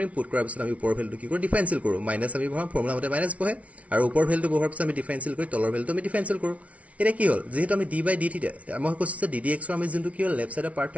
পুট কৰাৰ পিছত আমি ওপৰৰ ভ্যালুটো কি কৰো ডিফাৰেন্সিয়েল কৰো মাইনাস আমি বহাম ফৰ্মুলা মতে মাইনাস বহে আৰু ওপৰৰ ভ্যালুটো বহাৰ পিছত আমি ডিফাৰেন্সিয়েল কৰি তলৰ ভ্যালুটো আমি ডিফাৰেন্সিয়েল কৰো এটা কি হল যেহেতু আমি d by d থিটা মই কৈছো যে ddx ৰ আমি যোনটো কি হল লেফট সাইডৰ পাৰ্ট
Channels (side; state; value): left; late; 0.066 ms